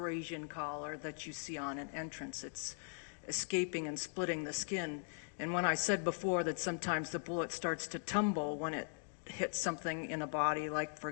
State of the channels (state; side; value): silent; right; digital silence